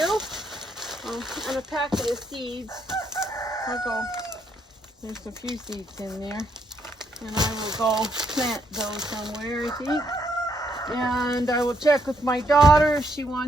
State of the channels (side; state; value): both; normal; correlation 0.73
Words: and a packet of seeds. I'll go, there's a few seeds in there. And I will go plant those somewhere, I think. And I will check with my daughter if she